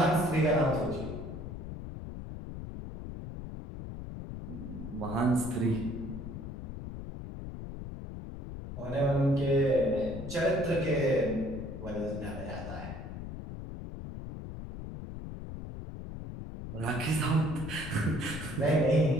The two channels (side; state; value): left; noise; rumble, 9 dB below the sound